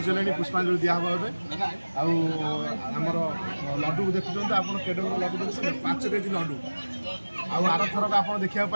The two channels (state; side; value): inverted; both; correlation -1.00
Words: ପୁଷ୍ପାଞ୍ଜଳି ଦିଆହେବ ଏବେ। ଆଉ ଆମର ଲଡ଼ୁକୁ ଦେଖୁଛନ୍ତି ଆପଣ, କେଡ଼େ ବଡ଼ ଲଡ଼ୁ ଦେଖୁଛନ୍ତି, 5 କେଜି ଲଡ଼ୁ। ଆଉ ଆରଥରକ ଆପଣ ଦେଖିବାକୁ